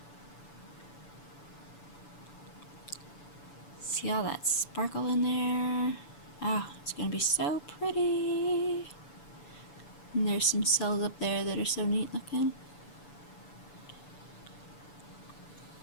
See all that sparkle in there? Oh, it's going to be so pretty. And there's some cells up there that are so neat looking.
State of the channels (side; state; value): right; late; 6.9 ms